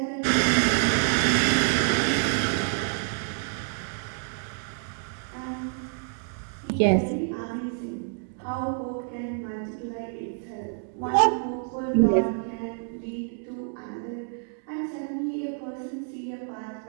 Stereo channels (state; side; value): silent; left; 57 dB below the other